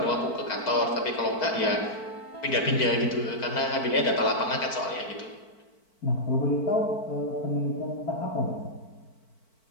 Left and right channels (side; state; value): right; late; 4.5 ms